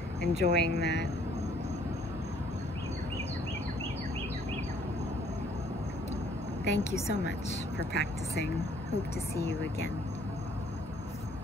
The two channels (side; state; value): both; normal; correlation 0.62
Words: enjoying that. Thank you so much for practicing. Hope to see you again.